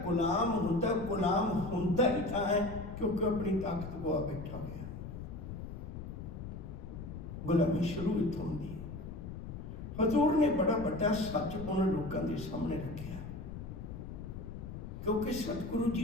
ਗੁਲਾਮ ਹੁੰਦਾ ਹੀ ਤਾਂ ਹੈ क्योंकि अपनी ताकत गवा बैठा गया। गुलामी शुरू इत्थों होंदी है। हजूर ने बड़ा बड़ा सच उन्होंने लोगों के सामने रखा, क्योंकि सतगुरु जी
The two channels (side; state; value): left; noise; rumble, 9 dB below the sound